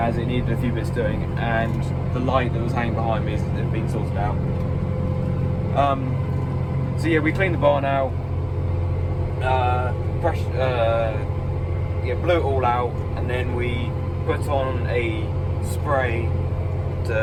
it needed a few bits doing, and the light that was hanging behind me had been sorted out. So yeah, we cleaned the barn out, blew it all out, and then we put on a spray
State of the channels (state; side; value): identical; both; correlation 1.00